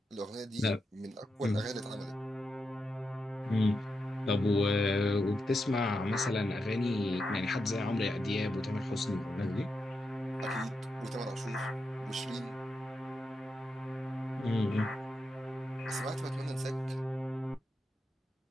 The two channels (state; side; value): normal; both; correlation 0.86